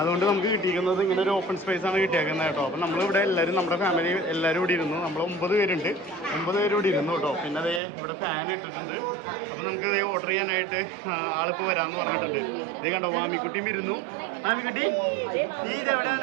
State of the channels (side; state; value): left; drops out; at 7.8 s